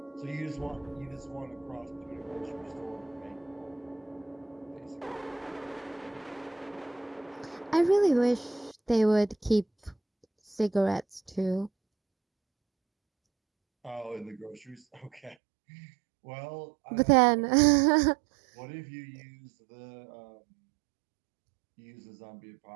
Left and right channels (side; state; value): left; drops out; at 15.4 s